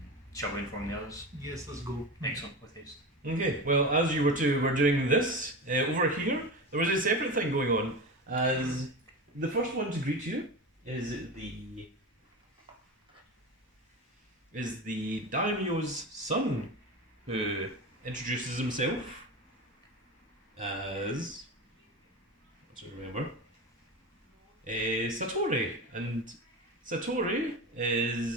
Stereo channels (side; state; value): both; normal; correlation 0.25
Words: Shall we inform the others? Yes, let's go. Excellent, with haste. Okay, well, as you were doing this, over here, there was a separate thing going on, as the first one to greet you is the Daimyo's son, who introduces himself as, let's remember, Satori, and Satori